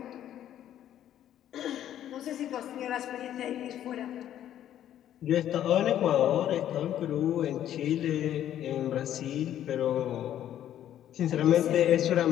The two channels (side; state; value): right; quieter; 11.3 dB